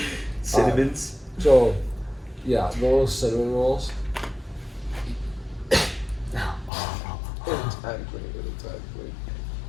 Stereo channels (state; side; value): drops out; right; at 6.7 s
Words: cinnamons? So, yeah, the little cinnamon rolls. Exactly.